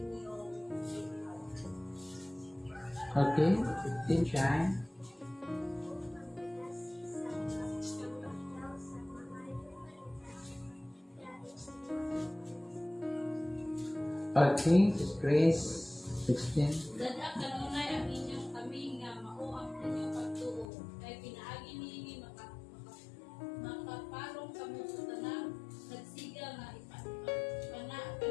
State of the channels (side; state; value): right; drops out; at 20.7 s